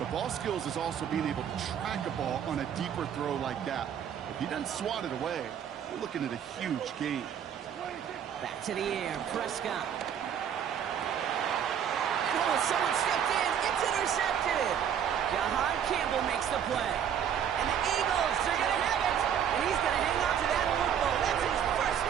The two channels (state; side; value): quieter; left; 8.7 dB